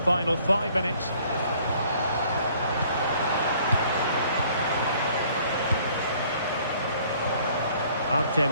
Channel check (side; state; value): both; inverted; correlation -0.58